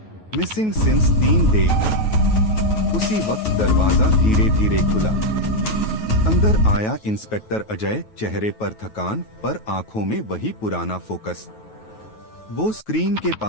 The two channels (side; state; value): right; late; 9.3 ms